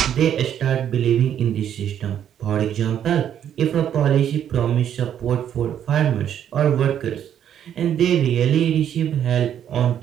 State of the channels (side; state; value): left; quieter; 9.7 dB